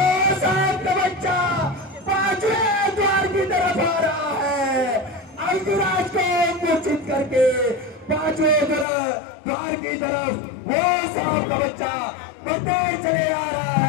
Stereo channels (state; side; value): drops out; right; at 8.8 s